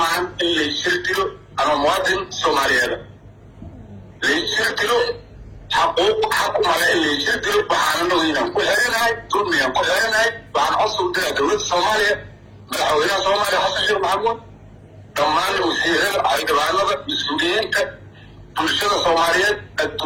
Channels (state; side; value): identical; both; correlation 1.00